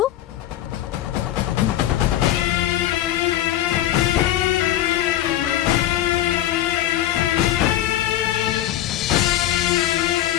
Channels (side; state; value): right; quieter; 13.0 dB